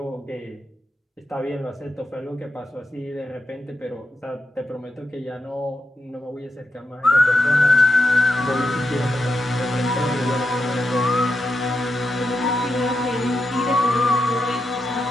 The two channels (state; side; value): normal; both; correlation 0.86